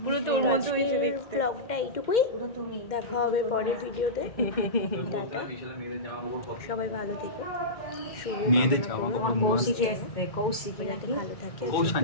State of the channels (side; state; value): right; late; 2.1 ms